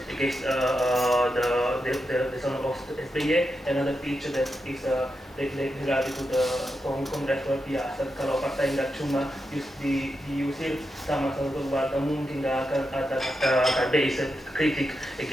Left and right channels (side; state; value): both; normal; correlation 0.87